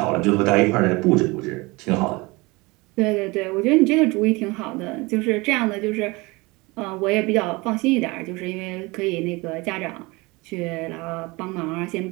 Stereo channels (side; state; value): left; quieter; 24.4 dB